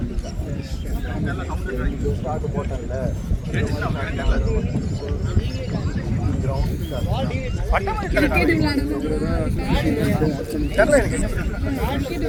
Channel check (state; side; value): identical; both; correlation 1.00